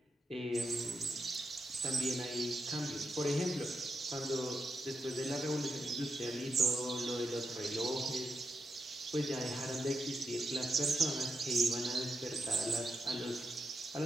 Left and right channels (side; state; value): both; normal; correlation 0.85